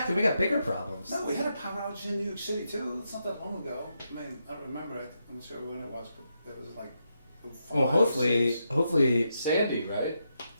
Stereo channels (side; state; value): both; inverted; correlation -0.83